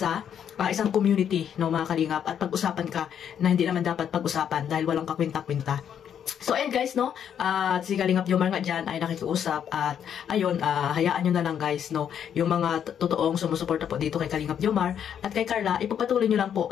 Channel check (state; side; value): quieter; right; 8.8 dB